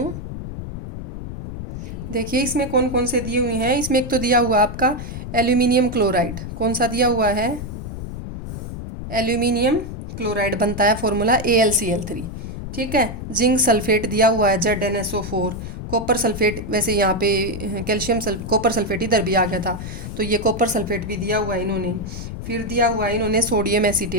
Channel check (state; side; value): noise; left; rumble, 8 dB below the sound